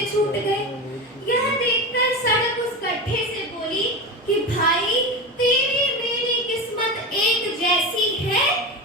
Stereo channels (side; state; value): both; normal; correlation 0.24